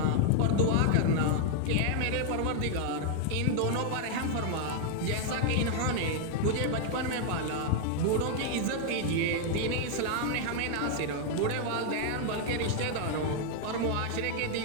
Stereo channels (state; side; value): different; both; correlation 0.00